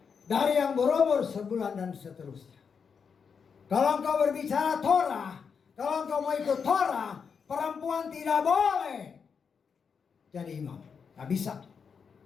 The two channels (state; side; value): quieter; right; 6.2 dB